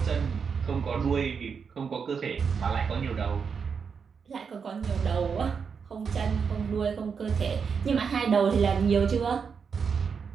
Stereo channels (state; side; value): quieter; left; 6.1 dB